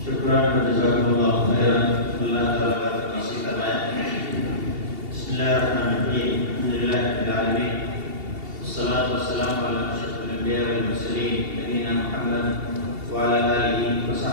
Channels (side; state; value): left; late; 2.8 ms